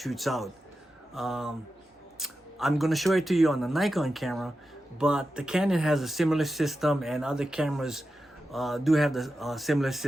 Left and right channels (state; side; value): normal; both; correlation 0.91